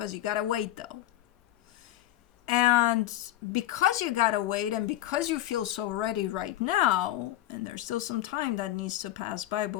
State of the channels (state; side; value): quieter; right; 14.0 dB